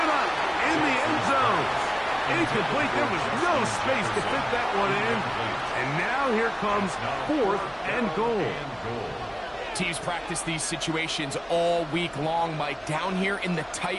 up in the end zone. Incomplete. There was no space to fit that one in. And now here comes 4th and goal. Teams practice these situations all week long, Mike. Down here in the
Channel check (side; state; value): both; identical; correlation 1.00